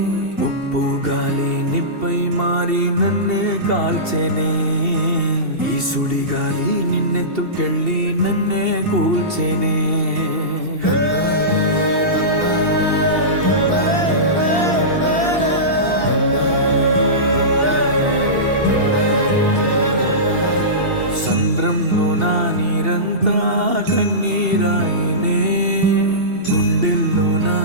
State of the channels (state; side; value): late; left; 2.7 ms